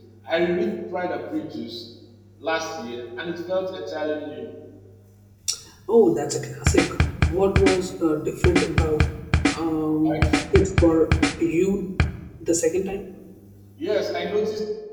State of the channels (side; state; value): both; identical; correlation 1.00